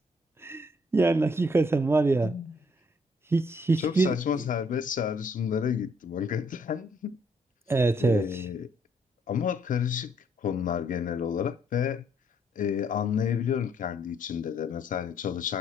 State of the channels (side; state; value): both; normal; correlation 0.68